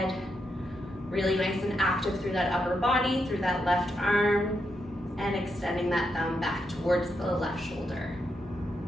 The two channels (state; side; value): normal; both; correlation 0.82